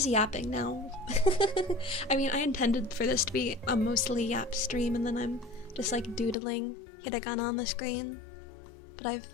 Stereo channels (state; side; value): drops out; right; at 6.4 s